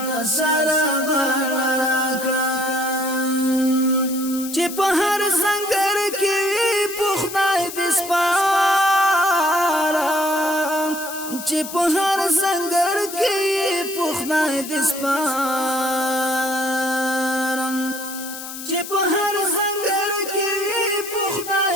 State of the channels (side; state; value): left; noise; hiss, 10 dB below the sound